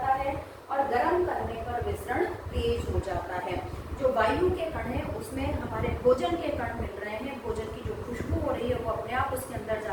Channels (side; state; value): both; identical; correlation 1.00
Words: है, और गर्म करने पर विसरण तेज हो जाता है। जो वायु के कण है उसमें हमारे भोजन के कण मिल रहे हैं, भोजन की जो खुशबू हो रही है वो अपने आप उसके अंदर